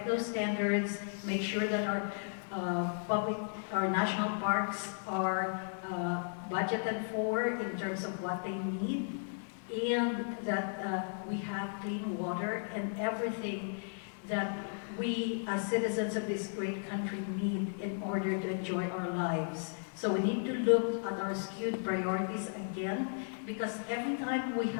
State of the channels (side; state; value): right; silent; digital silence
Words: those standards, make sure that our national parks are budgeted for in terms of what they need, and that we have clean water and everything that we as citizens of this great country need in order to enjoy our lives. So we need to look at our skewed priorities again, because every time we